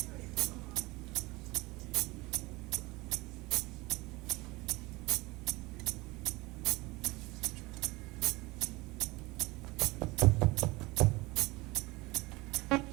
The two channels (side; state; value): left; quieter; 22.5 dB